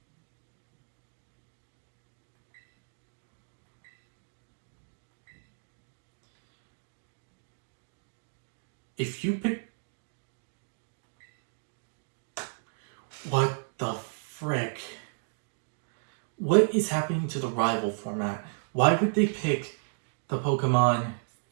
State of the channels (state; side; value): silent; left; digital silence